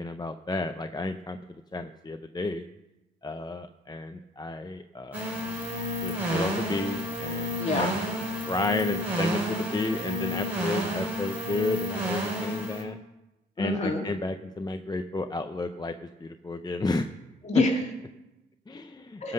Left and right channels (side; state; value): both; normal; correlation 0.57